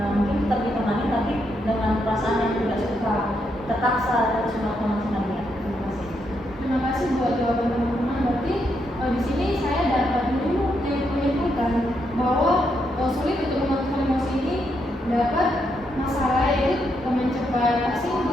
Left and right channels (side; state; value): both; normal; correlation 0.79